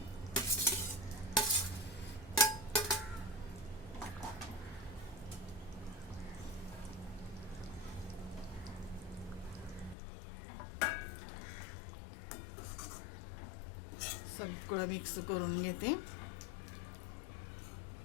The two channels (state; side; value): drops out; right; at 10.0 s